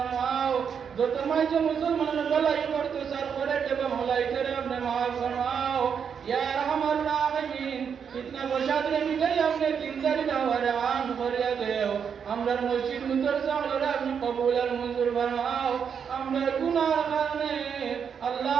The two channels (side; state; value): left; quieter; 7.1 dB